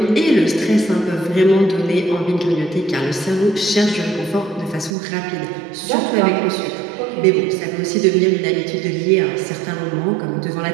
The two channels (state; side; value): drops out; left; at 4.9 s